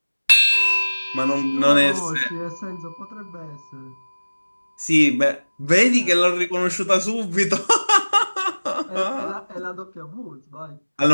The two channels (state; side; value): inverted; both; correlation -1.00